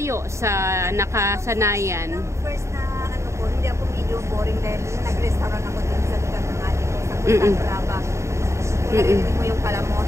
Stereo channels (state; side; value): late; left; 0.14 ms